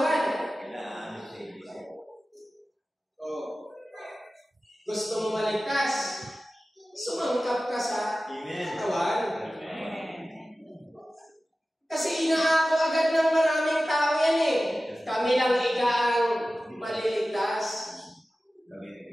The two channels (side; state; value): both; normal; correlation 0.96